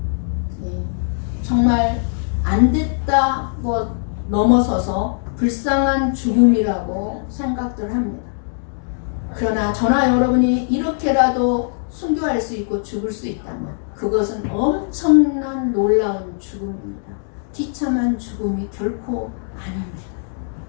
정말 안 됐다고 넘어서서 불쌍한 죽음이라고 생각들 합니다. 그러나 저나 여러분이 이렇게라도 순교할 수 있고 죽을 수 있다면 그것은 엄청난 놀라운 죽음입니다. 비참한 죽음이 결코 아닙니다.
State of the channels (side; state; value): right; silent; digital silence